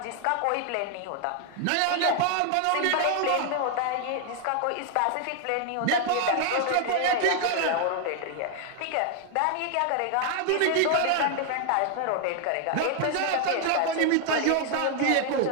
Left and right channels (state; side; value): different; both; correlation 0.00